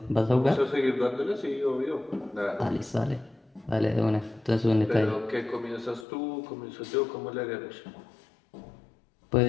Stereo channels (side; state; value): right; drops out; at 6.1 s